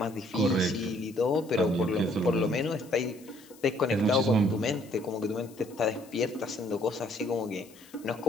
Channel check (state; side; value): noise; left; hiss, 24 dB below the sound